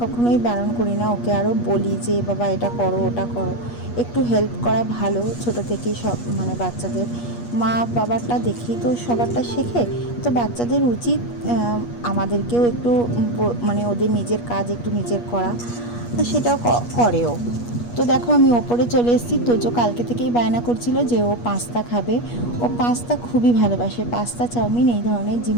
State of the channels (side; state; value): right; late; 8.4 ms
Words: কখনোই বারণ করি না, ওকে আরও বলি যে বাবা এটা করো ওটা করো। একটু হেল্প করা ভালো, ছোট থেকেই সব মানে বাচ্চাদের মা বাবারটা দেখেই তো সবারটা শেখে। তো বাচ্চাদের উচিত আমাদেরকেও একটু মানে ওদের নিজের কাজ একটু নিজের করা, সেটাও করেও। তো দেখো আমি ওপরে চলে এসেছি। তোজো কালকে থেকেই বায়না করছিল যে ও পাস্তা খাবে। ও পাস্তা খুবই ভালোবাসে, পাস্তা চাউমিন এই ধরনের